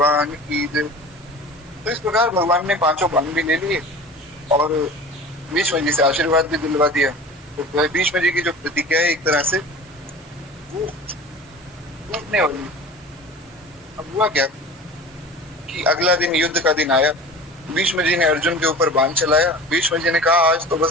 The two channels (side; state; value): both; normal; correlation 0.38